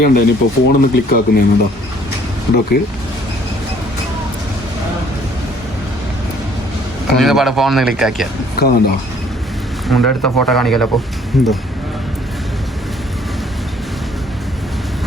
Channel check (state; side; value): normal; both; correlation 0.60